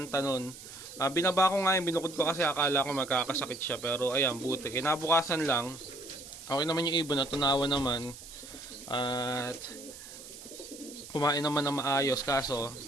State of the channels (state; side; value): noise; right; hiss, 15 dB below the sound